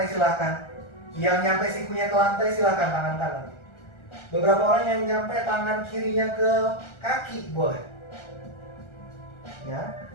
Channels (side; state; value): right; late; 1.3 ms